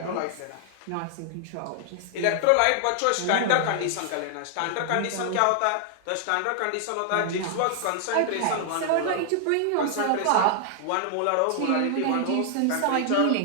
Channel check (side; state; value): both; different; correlation 0.00